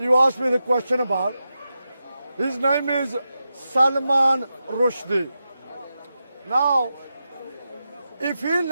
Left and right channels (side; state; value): both; inverted; correlation -0.90